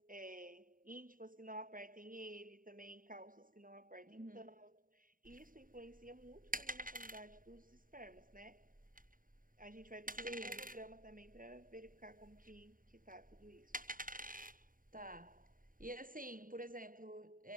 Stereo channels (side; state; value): left; late; 0.40 ms